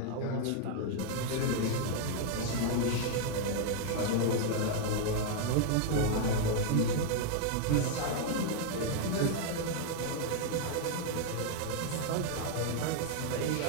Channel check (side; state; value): both; different; correlation 0.00